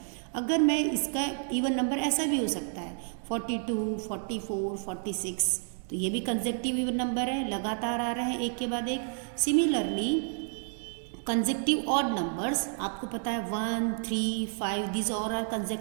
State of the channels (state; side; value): silent; left; 58 dB below the other